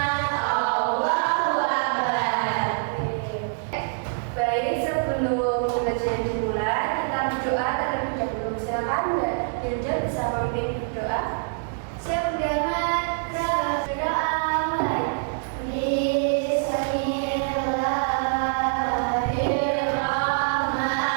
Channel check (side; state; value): left; silent; 62 dB below the other